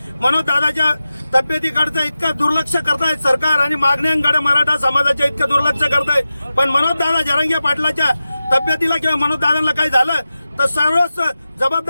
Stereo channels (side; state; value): both; inverted; correlation -0.94